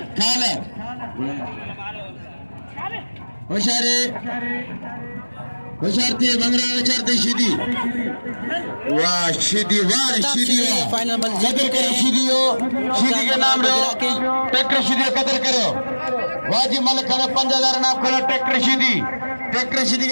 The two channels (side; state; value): both; inverted; correlation -1.00